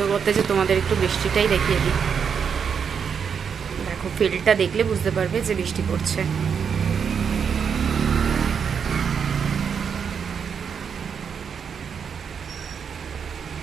করতে যে তোমাদের একটু বৃষ্টিটাই দেখিয়ে দিই দেখো ফিল্ডটা দেখলে বুঝতে পারবে যে বৃষ্টি পড়ছে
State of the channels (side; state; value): left; quieter; 6.9 dB